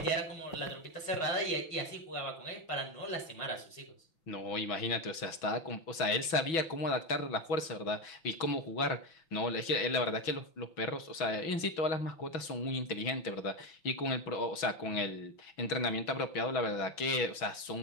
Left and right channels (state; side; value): late; right; 6.2 ms